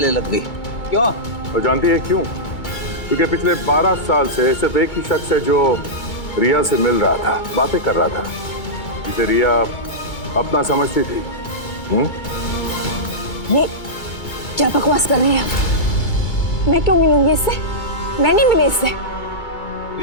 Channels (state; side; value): late; right; 2.2 ms